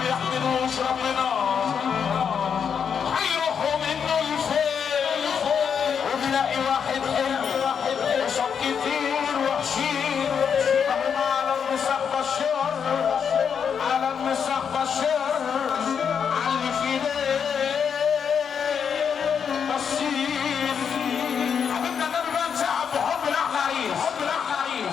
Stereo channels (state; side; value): quieter; right; 7.1 dB